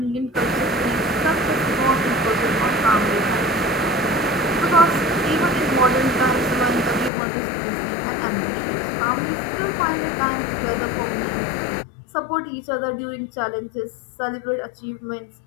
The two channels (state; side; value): drops out; right; at 7.1 s